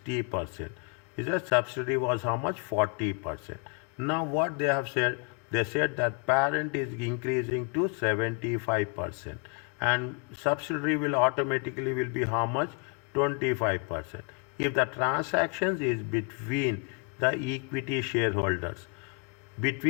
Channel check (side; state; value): right; quieter; 31.2 dB